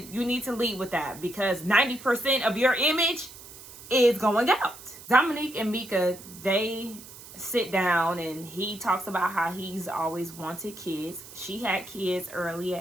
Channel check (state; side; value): noise; right; hiss, 17 dB below the sound